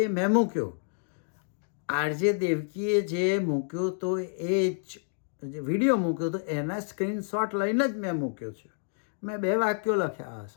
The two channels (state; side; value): silent; right; digital silence